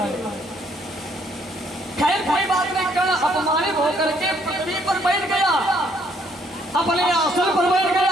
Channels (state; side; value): normal; both; correlation 0.67